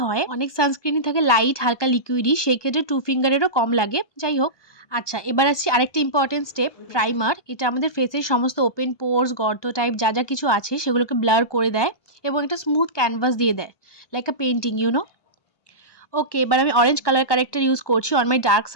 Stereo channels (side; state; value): right; late; 1.2 ms